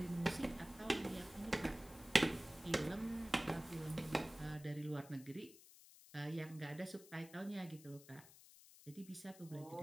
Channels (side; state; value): left; noise; hiss, 19 dB below the sound